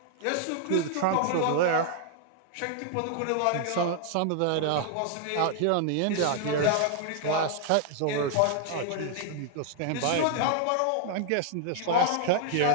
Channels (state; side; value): different; both; correlation 0.00